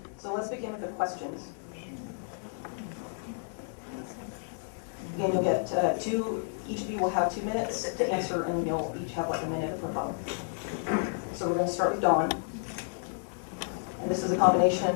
So let's begin with the questions. Again, you'll get each of you will have 2 minutes to answer, and you'll each have like a minute for both. So we're going to start with Dawn. And this is a combination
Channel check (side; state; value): right; silent; 57 dB below the other